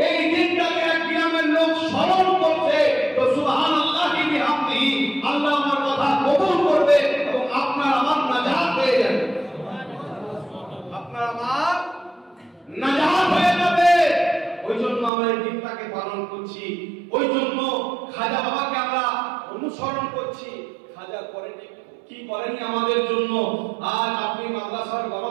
এই দিনটাকে এক গ্রামের লোক স্মরণ করছে, তো সুবহানাল্লাহি বিহামদিহি, আল্লাহ আমার কথা কবুল করবে এবং আপনার আমার নাজাত হয়ে যাবে, আপনার আমার নাজাত হয়ে যাবে। ওই জন্য আমরা এই দিনটাকে পালন করছি, ওই জন্য খাজা বাবাকে আমরা অনুসরণ করছি। খাজা করেনি কি করেনি আমাদের জন্য? আজ আপনি মাদ্রাসার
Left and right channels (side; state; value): left; drops out; at 15.1 s